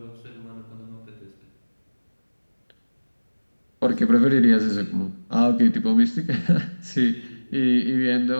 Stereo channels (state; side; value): inverted; both; correlation -1.00